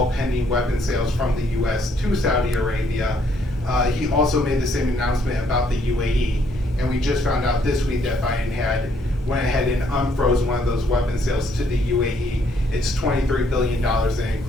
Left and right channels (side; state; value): both; normal; correlation 0.69